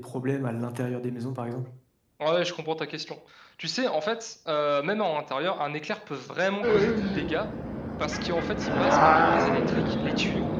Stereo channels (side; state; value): both; identical; correlation 1.00